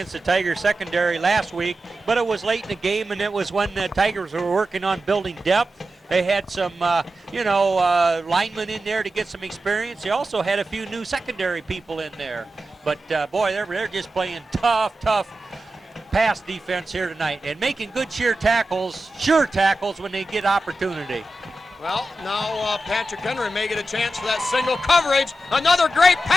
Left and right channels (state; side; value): normal; both; correlation 0.92